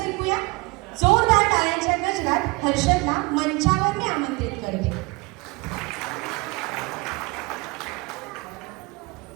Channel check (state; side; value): quieter; left; 25.8 dB